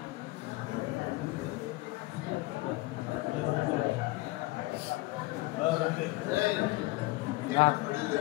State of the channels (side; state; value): right; quieter; 21.4 dB